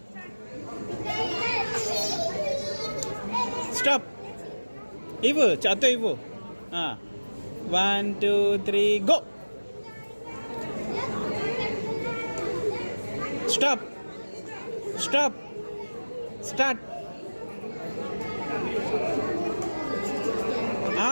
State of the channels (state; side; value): inverted; both; correlation -1.00